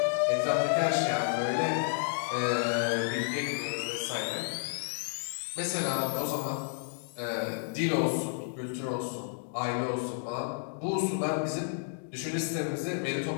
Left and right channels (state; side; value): silent; right; digital silence